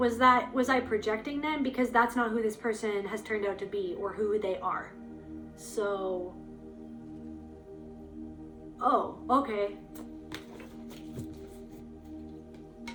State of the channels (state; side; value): identical; both; correlation 1.00